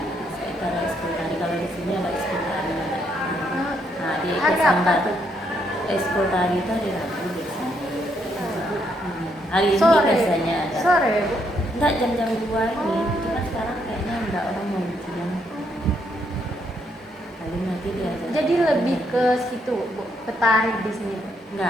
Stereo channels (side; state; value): both; normal; correlation 0.74